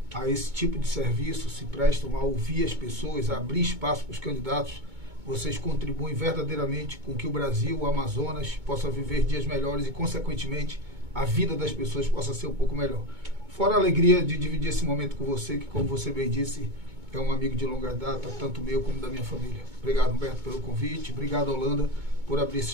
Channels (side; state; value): left; late; 2.2 ms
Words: a esse tipo de serviço, se prestam a ouvir as pessoas, a abrir espaço para os candidatos, vocês contribuem verdadeiramente com que o Brasil, o Amazonas, possa viver dias melhores e, consequentemente, a vida das pessoas possa ser um pouco melhor. Fora a alegria de dividir esse momento com você, que, como você bem disse, é um amigo de longa data, tanto meu como da minha família. Obrigado, Humberto, pelo convite. Obrigado, Holanda, por abrir esse